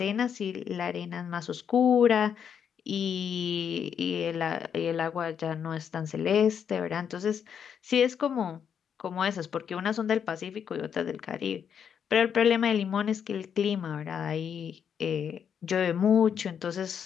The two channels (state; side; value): quieter; right; 7.8 dB